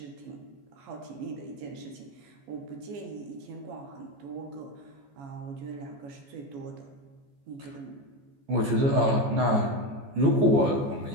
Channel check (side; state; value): left; late; 14 ms